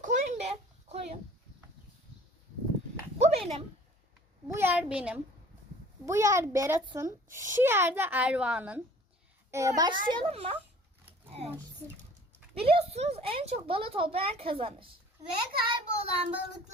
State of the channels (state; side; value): normal; both; correlation 0.50